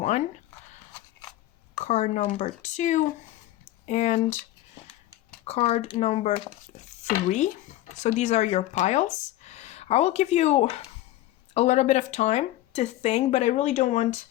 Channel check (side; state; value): right; quieter; 15.3 dB